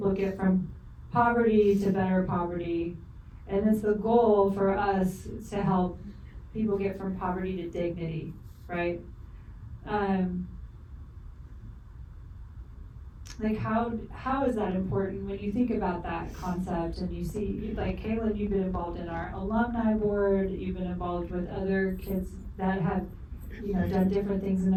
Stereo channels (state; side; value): identical; both; correlation 1.00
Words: get from poverty to better poverty, and it's the goal for us to help people get from poverty to dignity, right? Like, how is that important when you think about that concept and you see, like, Caylin, you've been involved in our alumni board, you've been involved with other kids that have, you know, done different things in